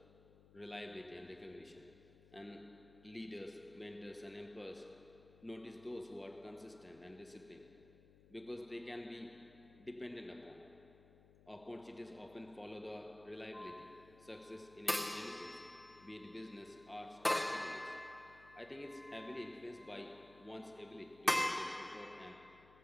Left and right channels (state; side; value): noise; left; hum, 21 dB below the sound